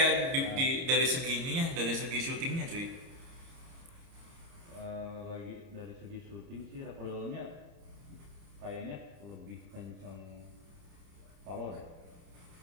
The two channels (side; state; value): left; late; 29 ms